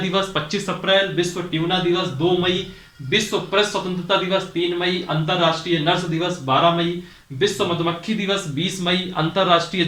25 अप्रैल, विश्व ट्यूना दिवस 2 मई, विश्व प्रेस स्वतंत्रता दिवस 3 मई, अंतरराष्ट्रीय नर्स दिवस 12 मई, विश्व मधुमक्खी दिवस 20 मई, अंतरराष्ट्रीय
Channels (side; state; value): both; identical; correlation 1.00